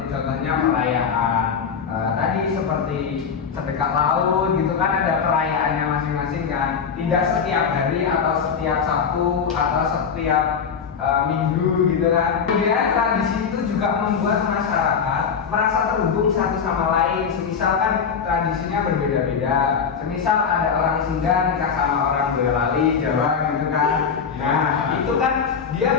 contohnya perayaan tadi seperti sedekah laut gitu kan, ada perayaannya masing-masing kan. Tidak setiap hari atau setiap Sabtu atau setiap minggu gitu kan. Kemudian tradisi itu juga membuat masyarakat merasa terhubung satu sama lain. Semisal kan tradisinya berbeda-beda. Semisal ada orang Sunda nikah sama orang Boyolali Jawa gitu kan. Nah itu kan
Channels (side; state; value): right; quieter; 6.5 dB